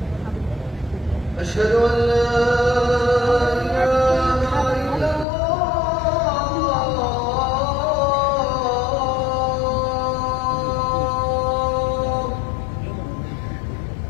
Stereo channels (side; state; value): right; drops out; at 5.2 s